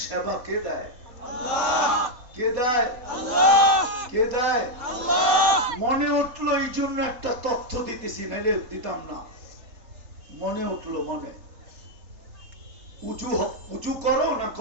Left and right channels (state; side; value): late; left; 3.8 ms